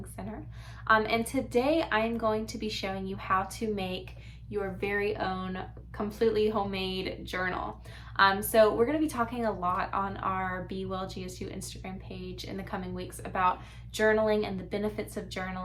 Center. And today I am going to be showing you how to make your very own completely homemade journal. So we're going to be talking a lot on our Be Well GSU Instagram page in the coming weeks about journaling and the benefits of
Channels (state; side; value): identical; both; correlation 1.00